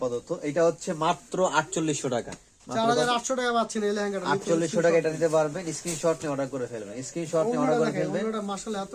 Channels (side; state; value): both; identical; correlation 1.00